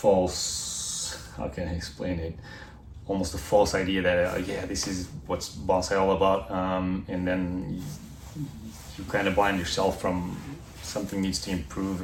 how can I explain it? Almost a false idea that this is what's bonsai all about, and then you kind of blind yourself from something needs to improve,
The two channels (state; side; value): identical; both; correlation 1.00